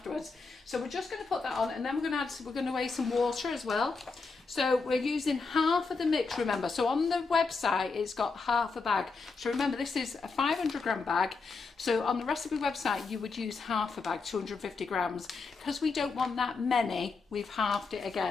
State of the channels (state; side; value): quieter; right; 4.4 dB